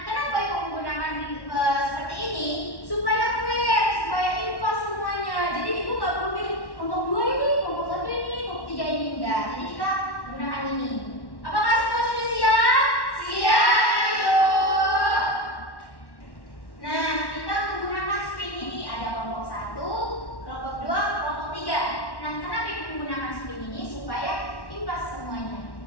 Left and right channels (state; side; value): late; right; 1.1 ms